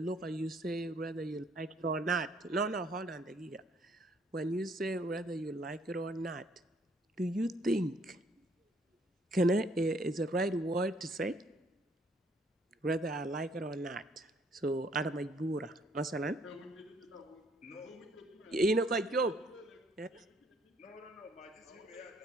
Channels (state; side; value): normal; both; correlation 0.65